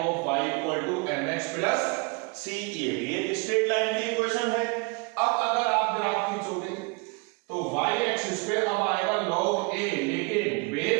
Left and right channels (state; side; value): quieter; left; 30.3 dB